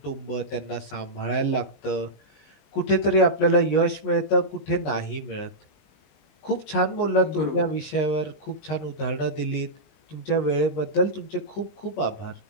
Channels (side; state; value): right; late; 19 ms